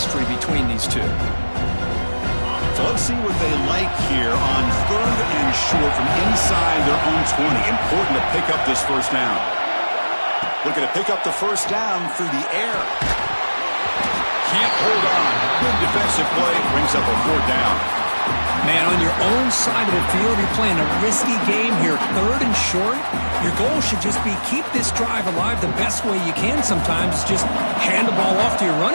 between these two. So let's see what they like here on 3rd and short from inside their own 20. Important to pick up this 1st down. Looking to pick up the 1st down through the air. Can't hold on. Good defensive play. Brings up a 4th down. Man, on your own side of the field, you're playing a risky game here. 3rd and short. Your goal should just be keep this drive alive the best way you can sometimes. Is just hand the ball off to your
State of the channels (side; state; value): both; inverted; correlation -1.00